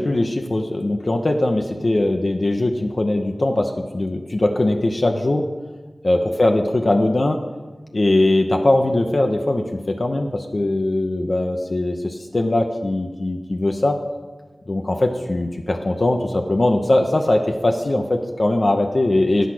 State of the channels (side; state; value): both; normal; correlation 0.98